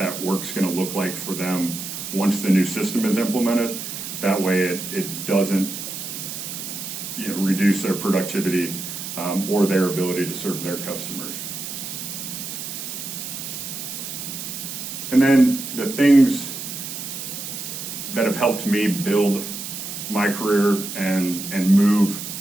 work's going to look like for them once the new system is implemented. That way it doesn't reduce their productivity or their ability to serve their customers. And then the things that have helped me build my career and move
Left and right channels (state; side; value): noise; right; hiss, 7 dB below the sound